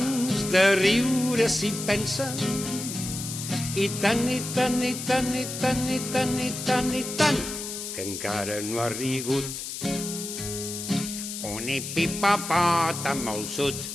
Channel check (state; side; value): noise; left; hiss, 7 dB below the sound